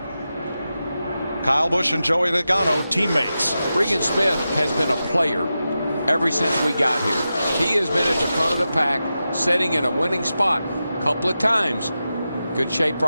Kyle Busch and Joey Logano, teammates. Regan Smith has been a player ever since we got here. He has been at the front of the pack, setting in a winning spot a couple of times. Good shape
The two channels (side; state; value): both; inverted; correlation -0.91